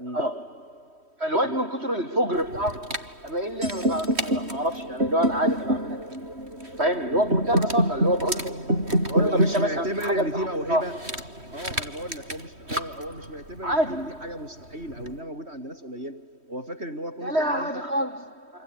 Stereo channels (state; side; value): late; left; 3.1 ms